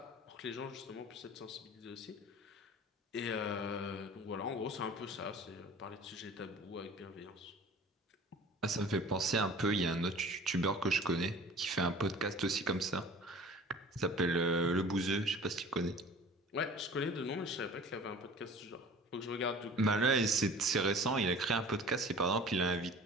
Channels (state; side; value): normal; both; correlation 0.44